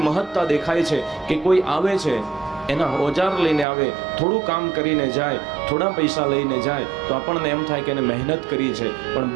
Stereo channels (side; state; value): left; drops out; at 3.7 s